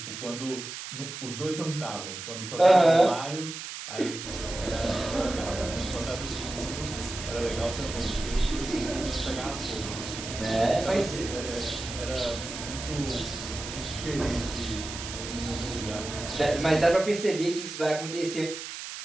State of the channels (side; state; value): right; noise; hiss, 9 dB below the sound